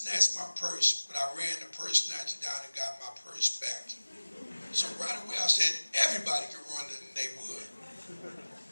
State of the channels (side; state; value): both; inverted; correlation -1.00